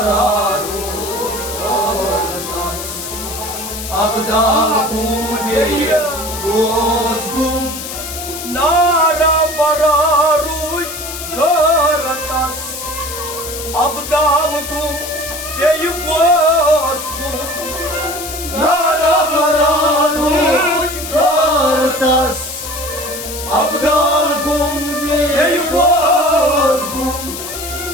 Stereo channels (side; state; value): left; noise; hiss, 8 dB below the sound